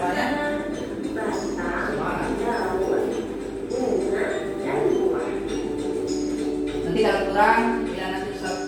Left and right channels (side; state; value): both; identical; correlation 1.00